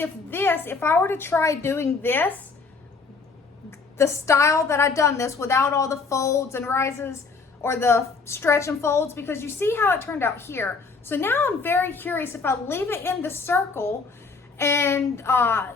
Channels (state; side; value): quieter; right; 4.6 dB